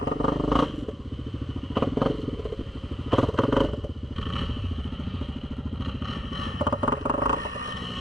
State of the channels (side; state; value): both; normal; correlation 0.81